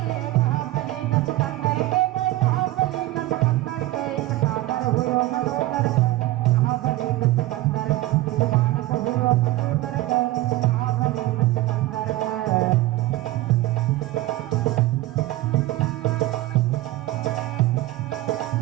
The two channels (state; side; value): quieter; left; 17.0 dB